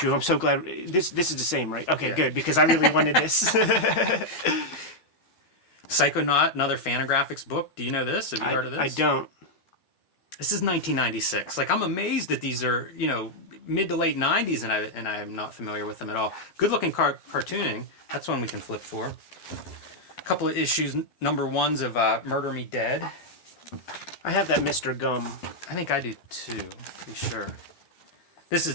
I'm so glad. This is the same, right? Okay, Yeah. good, because I really wanted this. Psychonaut, another Fantagraphics book. Do you know this? Have you heard of this? I don't. This is 1996. Like I'm amazed that these are mid to late 90s, and I'm not familiar with them at all. Good looking cartooning. That's one we can flip for. A couple of issues, number 1s of Murder Me Dead. I have that Mr. Gum. I think I do too, to be sure. This is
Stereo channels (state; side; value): late; right; 12 ms